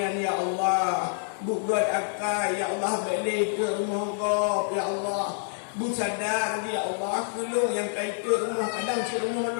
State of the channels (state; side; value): silent; right; 60 dB below the other